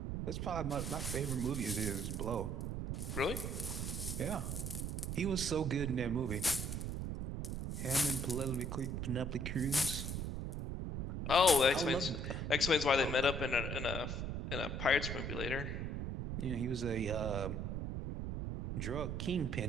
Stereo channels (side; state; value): right; noise; rumble, 3 dB below the sound